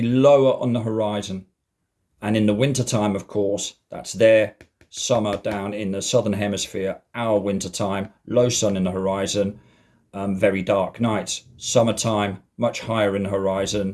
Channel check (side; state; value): both; identical; correlation 1.00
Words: lower on the horizon. And in the wintertime, of course, that's their summer down in the southern hemisphere, our wintertime, low sun in the horizon, very dark nights. Summertime, much higher in the